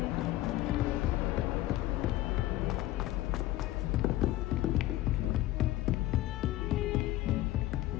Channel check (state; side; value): quieter; right; 15.8 dB